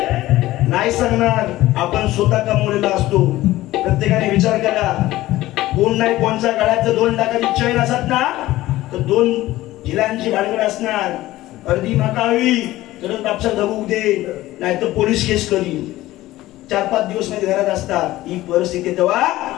नाही सांगणार. आपण स्वतः कमवलेला असतो. प्रत्येकाने विचार करा कोण नाही कोणच्या गळ्यात 2 लाखाची चैन असत ना तर 2 झिलांची भानगड असणार. अर्धी माकावी तरच बापसा धबूक दे नाही तर पोलीस केस करीन. 4-5 दिवस मध्ये घरात असतात. ही परिस्थिती तेव्हा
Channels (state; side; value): quieter; right; 16.5 dB